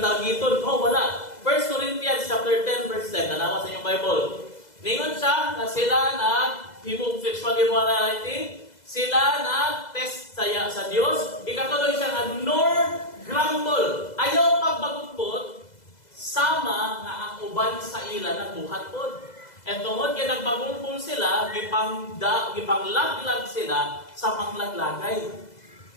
Oh, wala. 1 Corinthians chapter 10 verse 10. Tanawa sa inyong Bible. Ningon siya na sila himog sexual immorality. Sila test saya sa Diyos. Ikatuloy siya nga nor grumble. Ayaw pagbagutbot, sama nga ang uban sa ila nagbuhat pod. And tungod kay nagbagulbol sila, gipanglaglag sila sa panglaglagay.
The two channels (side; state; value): right; late; 2.0 ms